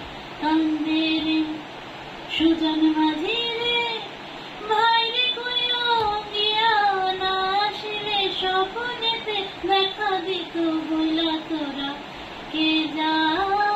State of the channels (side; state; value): both; identical; correlation 1.00